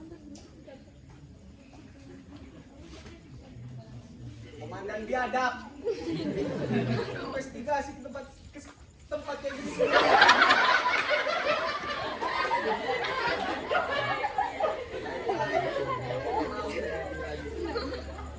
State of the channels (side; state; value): both; identical; correlation 1.00